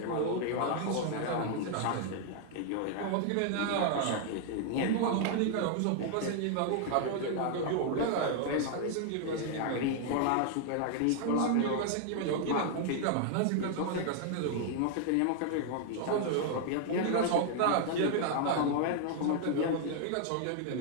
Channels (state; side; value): different; both; correlation 0.00